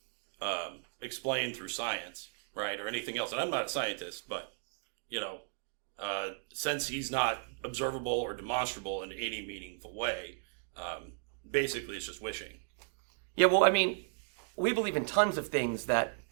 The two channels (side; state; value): left; silent; digital silence